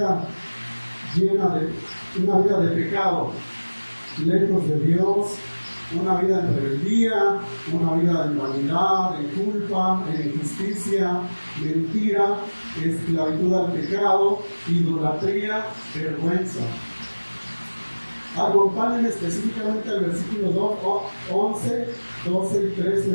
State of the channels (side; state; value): both; inverted; correlation -1.00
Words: una vida de pecado, lejos de Dios, una vida en rebeldía, una vida en vanidad, en culpa, en injusticia, mentira, esclavitud al pecado, idolatría, vergüenza. Acompáñenme específicamente al versículo 11, 12 y 13